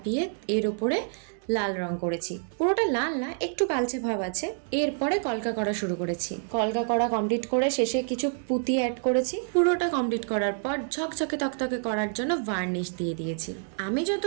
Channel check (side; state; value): left; silent; 60 dB below the other